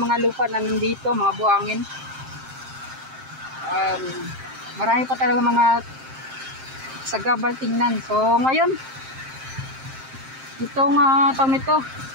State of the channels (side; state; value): left; late; 7.6 ms